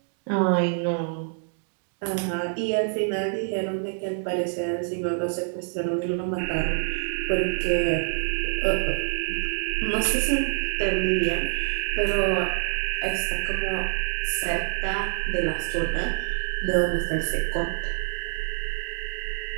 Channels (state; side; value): silent; left; 61 dB below the other